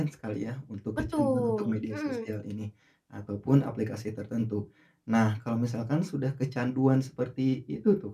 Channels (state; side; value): identical; both; correlation 1.00